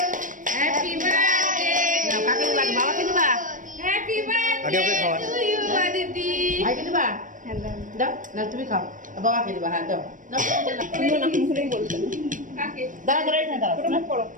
হ্যাপি বার্থডে কাকে দিবা বাবাকে দিবা হ্যাপি বার্থডে টু ইউ দিদি ভাইকে দিবা দাও না তুমি খাও বাবাকে দিবা হ্যাঁ দাও তুমি না মুখেই বলতে কাকে দাঁড়া দাঁড়াই না দাঁড়া করো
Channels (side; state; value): left; late; 0.38 ms